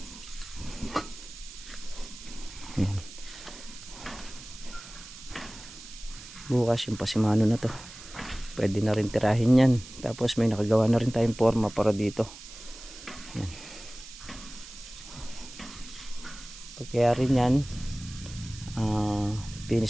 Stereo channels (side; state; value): right; noise; hiss, 16 dB below the sound